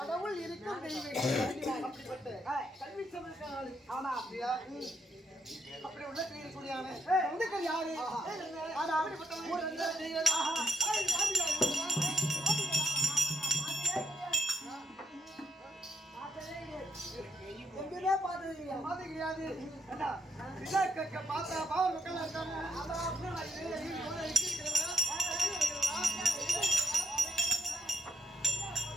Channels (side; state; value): both; normal; correlation 0.77